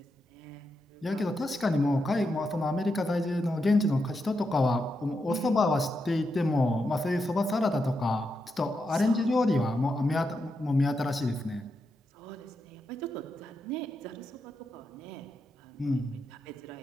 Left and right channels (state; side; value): normal; both; correlation 0.85